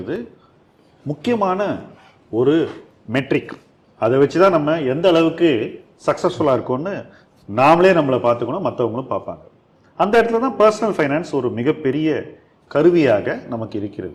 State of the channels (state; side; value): identical; both; correlation 1.00